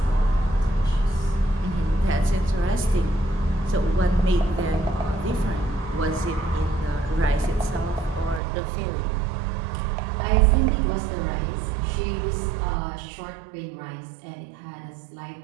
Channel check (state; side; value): drops out; left; at 8.4 s